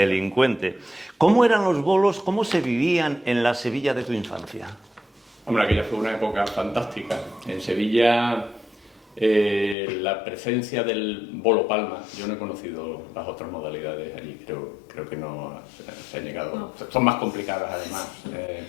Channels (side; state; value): right; drops out; at 9.8 s